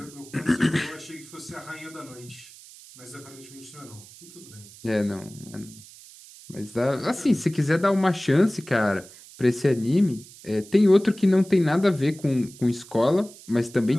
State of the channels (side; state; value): right; noise; hiss, 20 dB below the sound